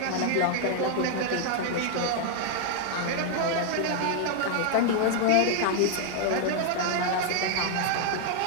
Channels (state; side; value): different; both; correlation 0.00